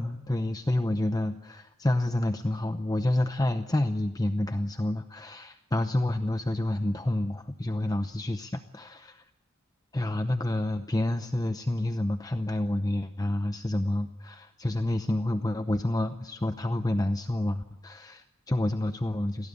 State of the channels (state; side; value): normal; both; correlation 0.94